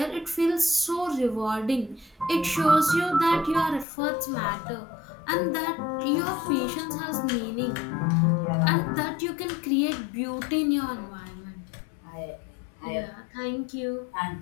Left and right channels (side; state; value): right; drops out; at 3.9 s